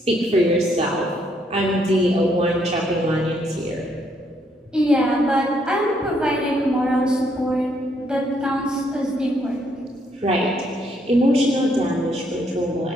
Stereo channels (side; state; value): both; normal; correlation 0.72